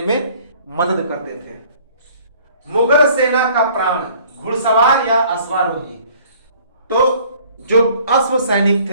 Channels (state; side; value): inverted; both; correlation -0.55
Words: में मदद करते थे। मुगल सेना का प्राण, घुड़सवार या अश्वारोही। तो जो अश्व सैनिक